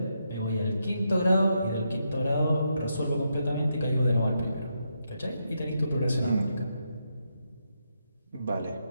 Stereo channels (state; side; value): inverted; both; correlation -0.82